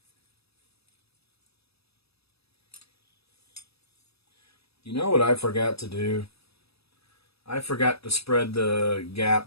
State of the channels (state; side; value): late; right; 0.78 ms